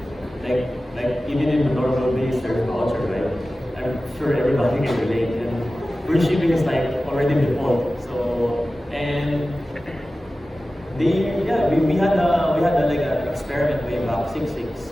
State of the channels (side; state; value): both; normal; correlation 0.95